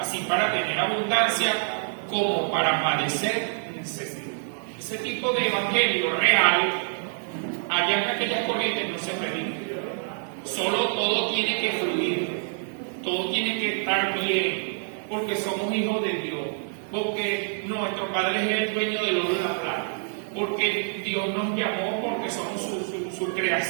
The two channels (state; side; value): silent; left; digital silence